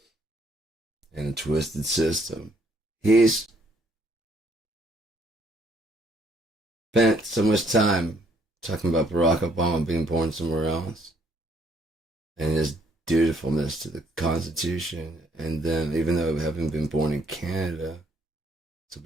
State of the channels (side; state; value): both; normal; correlation 0.66